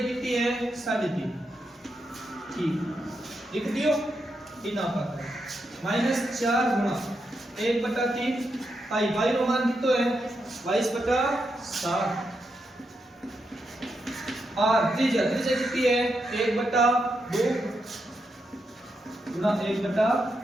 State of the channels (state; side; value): normal; both; correlation 0.84